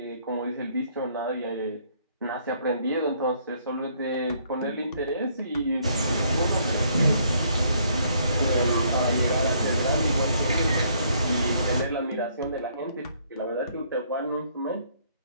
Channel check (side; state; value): both; inverted; correlation -0.67